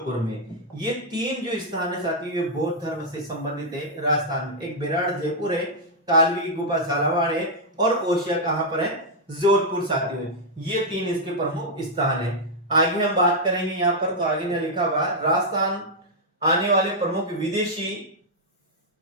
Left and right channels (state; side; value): normal; both; correlation -0.04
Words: में। ये तीन जो स्थान है साथियों ये बौद्ध धर्म से संबंधित है राजस्थान में। एक बेराट जयपुर है, कालवी की गुफा झालावाड़ है और ओसिया कहां पर है? जोधपुर साथियों। ये तीन इसके प्रमुख स्थान है। आगे हम बात करेंगे यहाँ पर, तो आगे ने लिखा हुआ राजस्थान आने वाले प्रमुख